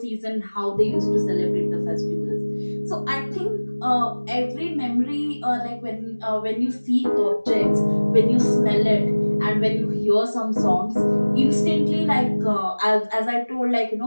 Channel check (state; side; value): inverted; both; correlation -1.00